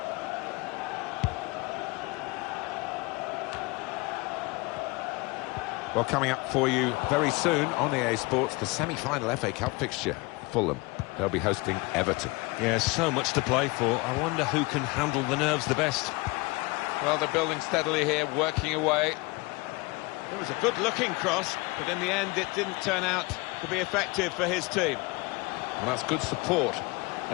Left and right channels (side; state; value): right; quieter; 24.5 dB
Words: Well, coming up for you very soon on EA Sports, the semi-final FA Cup fixture. Fulham, they'll be hosting Everton. Yeah, so much to play for. I wonder who can handle the nerves the best. Well, they're building steadily here, working away. It was a good-looking cross, but in the end it didn't turn out to be effective for his team. And that's good support